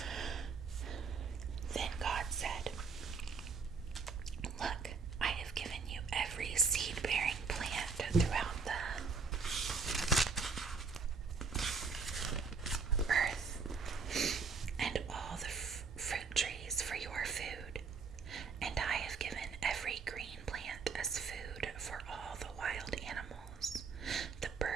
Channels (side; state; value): left; quieter; 4.9 dB